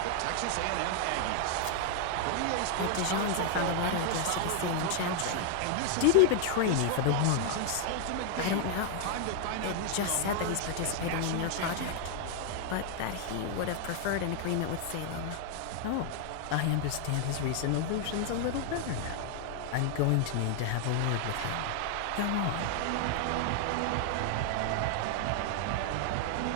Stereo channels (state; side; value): different; both; correlation 0.00